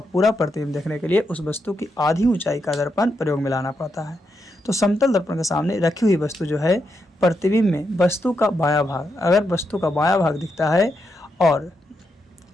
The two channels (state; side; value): normal; both; correlation 0.83